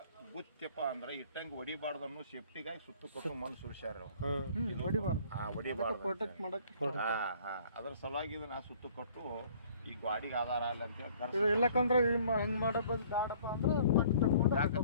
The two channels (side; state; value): both; inverted; correlation -0.55